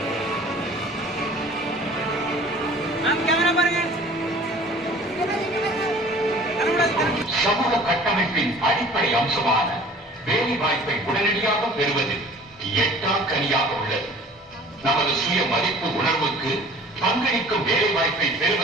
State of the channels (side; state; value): both; normal; correlation 0.47